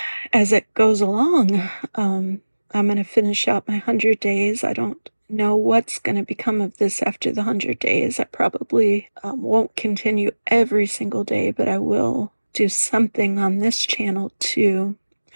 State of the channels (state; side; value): inverted; both; correlation -1.00